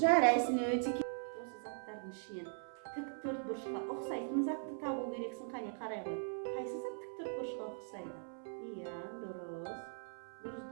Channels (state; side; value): silent; left; 51 dB below the other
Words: өте осы заттардың ішінен тік төрт бұрышқа ұқсайтын затты табу керексің. Қане, қарай ғой. Қайсы зат тік төрт бұрышқа ұқсайды? Иә, дұрыс. Дұрыс.